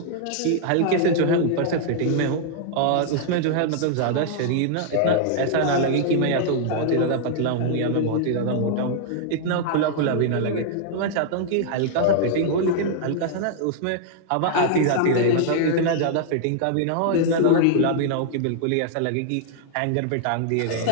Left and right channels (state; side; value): different; both; correlation -0.01